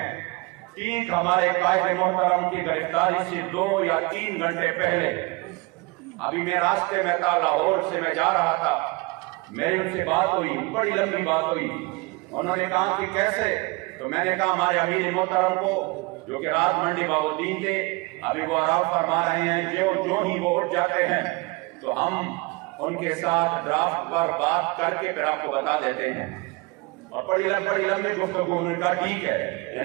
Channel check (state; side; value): quieter; left; 25.3 dB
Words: ठीक हमारे कायद मोहतरम की गिरफ्तारी से 2 या 3 घंटे पहले अभी मैं रास्ते में था, लाहौर से मैं जा रहा था, मेरी उनसे बात हुई, बड़ी लंबी बात हुई। उन्होंने कहा कि कैसे, तो मैंने कहा हमारे अमीर मोहतरम को जो कि रात मंडी बाउद्दीन थे, अभी वो आराम फरमा रहे हैं, जो ही वो उठ जाते हैं तो हम उनके साथ ड्राफ्ट पर बात करके फिर आपको बता देते हैं। और बड़ी लंबी गुफ्तगू, उन्होंने कहा ठीक है।